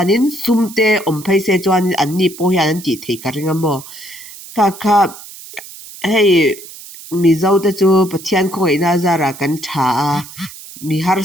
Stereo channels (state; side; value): noise; right; hiss, 16 dB below the sound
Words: sumte om phai se chuanin an ni po hian an ti thei ka ringa mo kha hei mizo te chu pathian khoi na zara kan tha mi